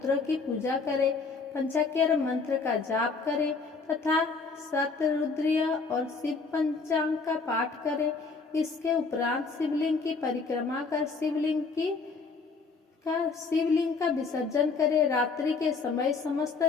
की पूजा करें। पंचाक्षर मंत्र का जाप करें तथा शतरुद्रीय और शिव पंचांग का पाठ करें। इसके उपरांत शिवलिंग की परिक्रमा कर शिवलिंग का विसर्जन करें। रात्रि के समय समस्त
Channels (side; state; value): right; quieter; 4.4 dB